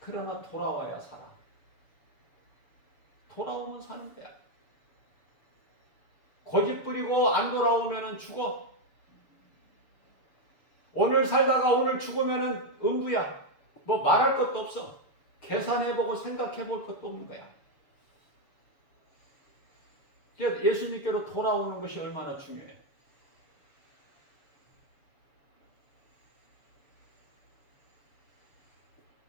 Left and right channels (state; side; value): late; right; 6.9 ms